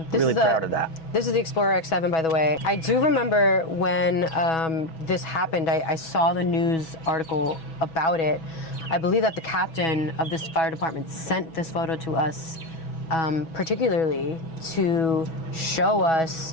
really proud of that. This is the Explorer X7, by the way. I do remember when this happened, I saw the news article about it. I believe that the captain of this fire department sent this photo to us particularly to show us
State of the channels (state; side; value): late; right; 6.1 ms